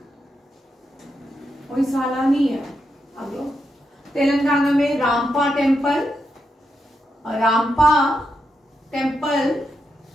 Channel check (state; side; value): normal; both; correlation 0.84